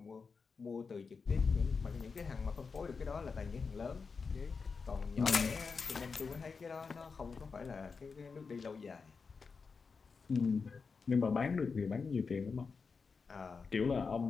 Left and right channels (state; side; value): quieter; right; 5.0 dB